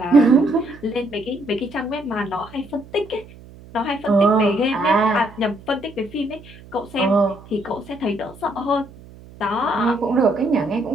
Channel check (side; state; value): right; noise; hum, 20 dB below the sound